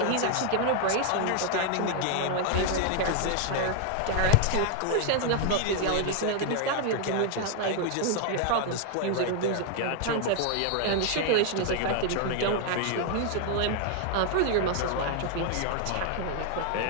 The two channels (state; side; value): different; both; correlation 0.00